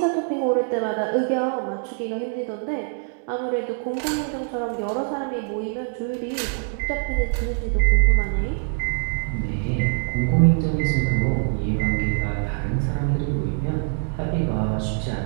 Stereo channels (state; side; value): silent; left; 63 dB below the other